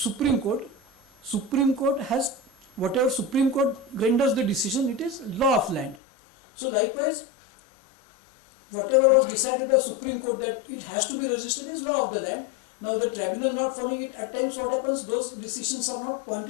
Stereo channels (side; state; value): right; drops out; at 6.0 s